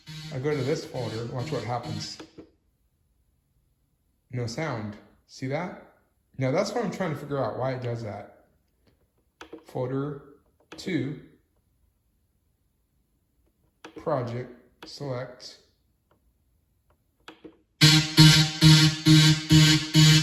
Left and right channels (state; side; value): identical; both; correlation 1.00